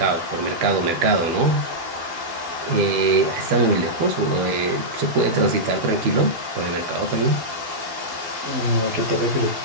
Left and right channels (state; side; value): late; left; 12 ms